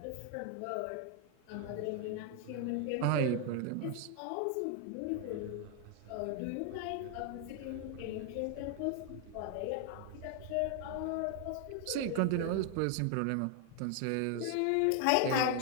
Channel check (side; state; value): both; different; correlation 0.00